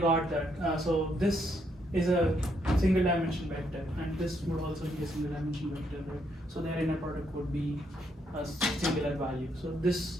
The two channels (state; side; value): normal; both; correlation 0.74